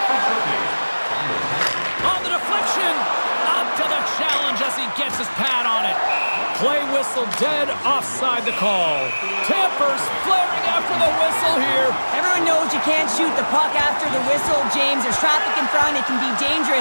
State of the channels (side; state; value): both; inverted; correlation -1.00